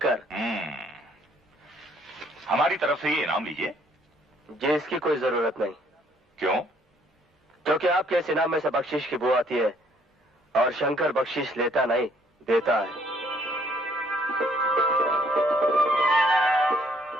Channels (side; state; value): both; normal; correlation 0.64